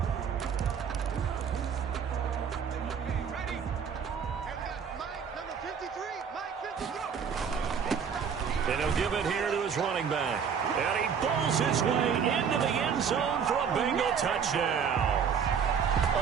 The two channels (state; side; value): quieter; left; 7.0 dB